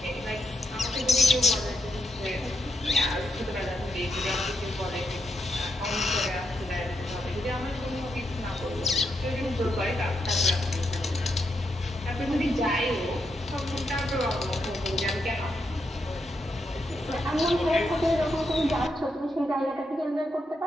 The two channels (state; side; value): normal; both; correlation 0.81